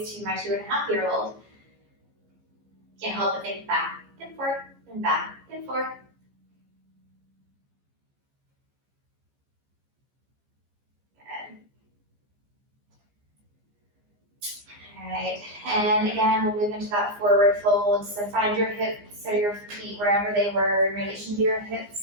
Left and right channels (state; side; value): late; left; 15 ms